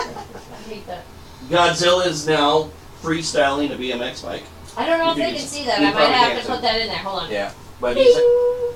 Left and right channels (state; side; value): identical; both; correlation 1.00